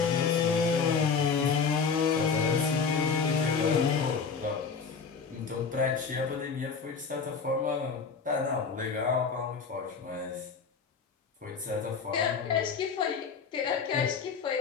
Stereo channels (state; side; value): quieter; right; 5.5 dB